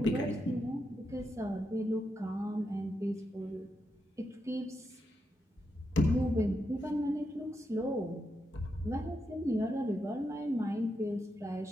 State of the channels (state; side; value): normal; both; correlation 0.84